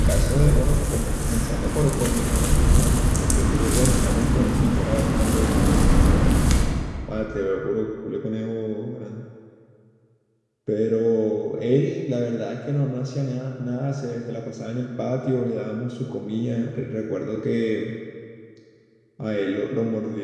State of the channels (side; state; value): both; identical; correlation 1.00